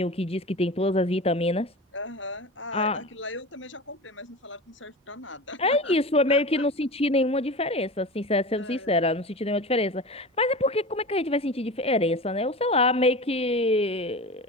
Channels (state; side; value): normal; both; correlation 0.31